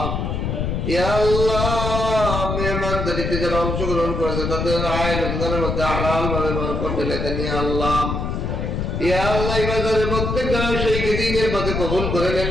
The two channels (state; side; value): noise; left; rumble, 2 dB below the sound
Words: ইয়া আল্লাহ, মেহমানদারিতে যারা অংশগ্রহণ করেছে তাদের আয় রোজগারের মধ্যে হালাল ভাবে বরকত ঢেলে দেন। ইয়া আল্লাহ, ইয়া আল্লাহ, এই বাজারে প্রত্যেক জনের সেই দিনের পথে কবুল করে নেন।